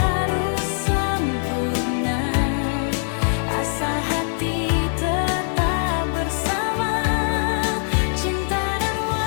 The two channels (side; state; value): right; silent; digital silence